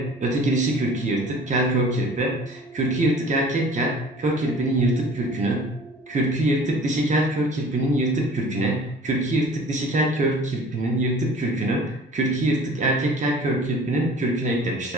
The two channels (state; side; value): normal; both; correlation 0.47